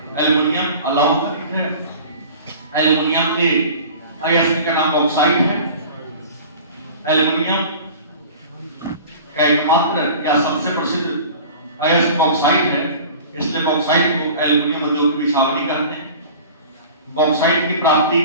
एल्युमिनियम अलौह खनिज है। एल्युमिनियम के अयस्क का नाम बॉक्साइट है। एल्युमिनियम का एकमात्र या सबसे प्रसिद्ध अयस्क बॉक्साइट है, इसलिए बॉक्साइट को एल्युमिनियम उद्योग की बिछावनी कहते हैं। बॉक्साइट की प्राप्ति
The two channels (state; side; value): inverted; both; correlation -0.41